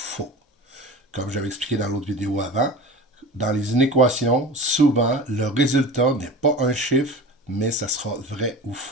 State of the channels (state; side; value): normal; both; correlation 0.35